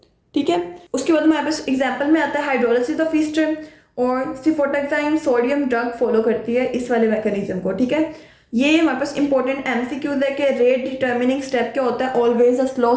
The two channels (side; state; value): both; identical; correlation 1.00